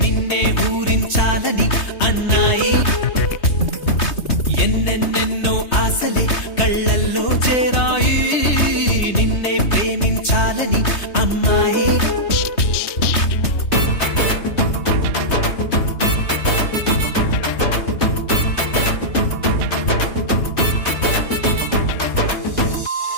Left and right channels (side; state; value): right; late; 3.2 ms